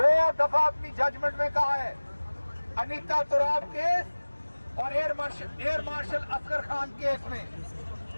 दफा अपनी जजमेंट में कहा है अनीता तुराब केस और air marshal Asghar Khan case में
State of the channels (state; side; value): inverted; both; correlation -1.00